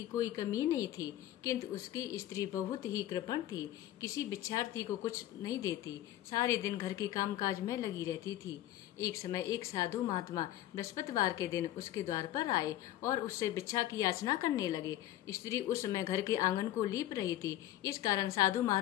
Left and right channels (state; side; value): quieter; right; 13.6 dB